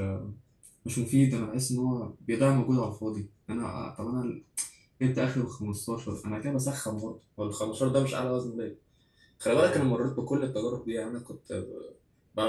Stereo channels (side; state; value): both; identical; correlation 1.00